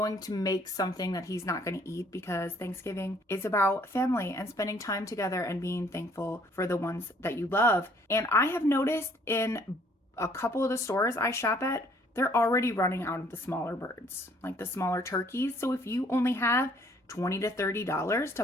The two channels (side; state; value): both; normal; correlation 0.61